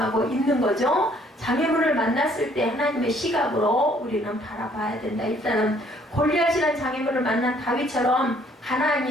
있는 거죠. 장애물을 만났을 때 하나님의 시각으로 우리는 바라봐야 된다. 일단은 골리앗이라는 장애물을 만난 다윗처럼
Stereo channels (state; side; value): normal; both; correlation 0.62